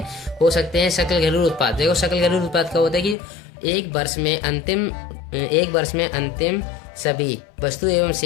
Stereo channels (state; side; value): drops out; right; at 3.2 s